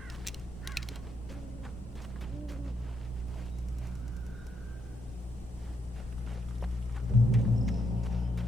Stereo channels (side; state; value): both; normal; correlation 0.78